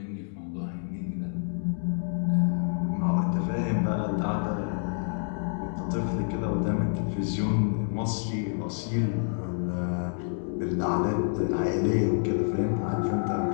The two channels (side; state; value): right; silent; digital silence